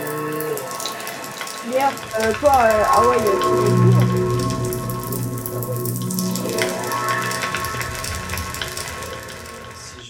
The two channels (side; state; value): both; identical; correlation 1.00